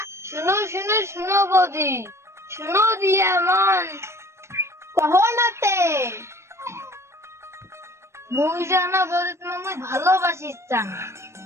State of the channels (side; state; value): left; late; 0.13 ms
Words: শুনো শুনো শুনো বৌদি, শুনো দিয়া মন কহো নাতে মুই জানা বৌদি, তোমাকে মুই ভালোবাসি চান।